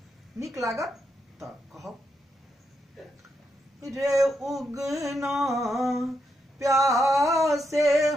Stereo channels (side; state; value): both; normal; correlation 0.82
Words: निक लागत त कहब। रे उगना प्यासे